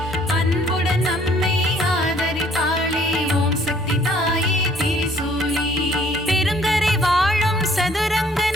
அன்புடன் நம்மை ஆதரிப்பாளே ஓம் சக்தி தாயே திரிசூலி. பெருங்கரை வாழும் சதுரங்க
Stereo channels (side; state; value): both; normal; correlation 0.60